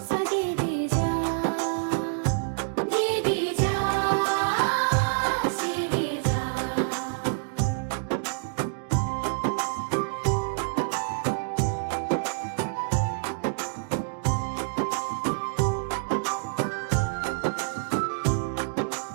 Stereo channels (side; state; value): left; silent; digital silence